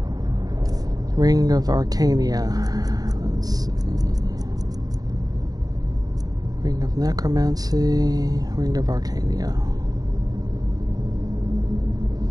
Ring of Arcania. Let's see. Ring of Necromancy. Ring of Arcania.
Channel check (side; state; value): left; late; 0.18 ms